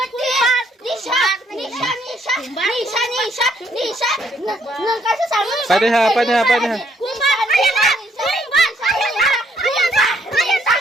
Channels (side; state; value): both; normal; correlation 0.69